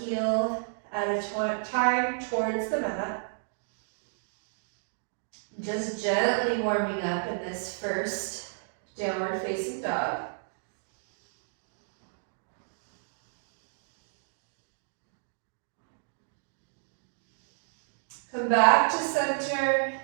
heel at a time towards the mat. Just gently warming up in this first downward facing dog. Come back to center,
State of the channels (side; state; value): left; silent; digital silence